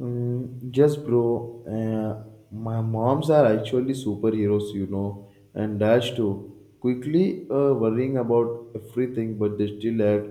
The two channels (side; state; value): both; identical; correlation 1.00